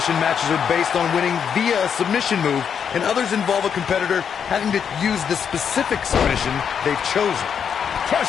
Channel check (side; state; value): right; quieter; 7.5 dB